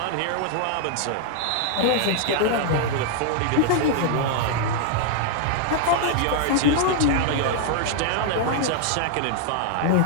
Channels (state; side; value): different; both; correlation 0.00